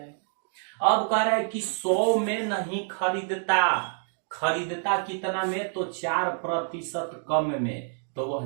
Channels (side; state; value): left; silent; 60 dB below the other